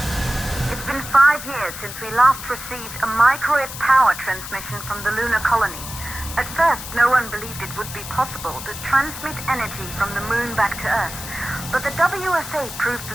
It's been 5 years since we last received a microwave power transmission from the lunar colony. At first, no one believed it would be possible to transmit energy from the moon back to Earth, but the WSA proved the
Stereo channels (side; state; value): left; noise; hiss, 10 dB below the sound